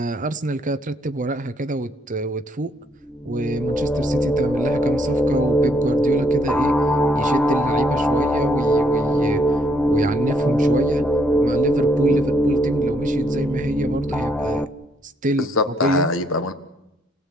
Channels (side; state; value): both; normal; correlation 0.71